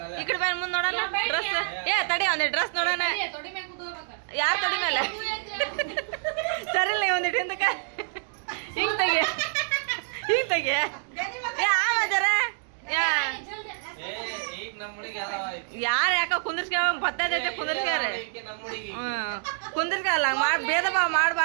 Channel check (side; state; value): left; silent; digital silence